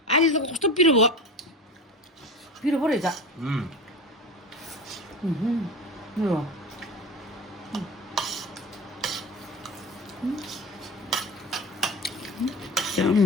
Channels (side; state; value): both; normal; correlation 0.31